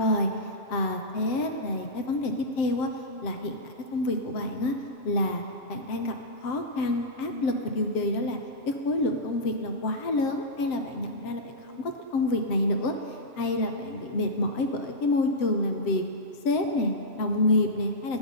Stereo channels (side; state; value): right; late; 7.6 ms